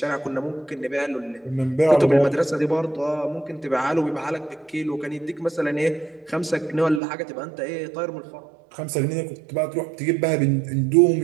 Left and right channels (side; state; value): left; drops out; at 7.0 s